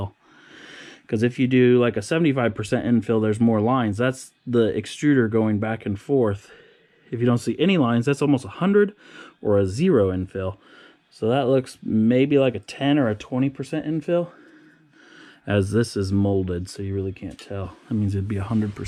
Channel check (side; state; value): both; identical; correlation 1.00